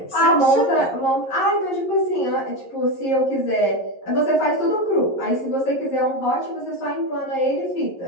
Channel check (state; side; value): late; right; 11 ms